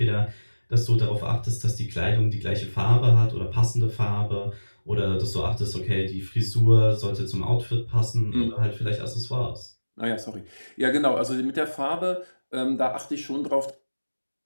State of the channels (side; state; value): both; inverted; correlation -1.00